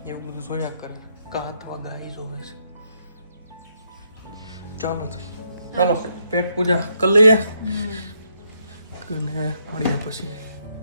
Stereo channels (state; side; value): inverted; both; correlation -0.76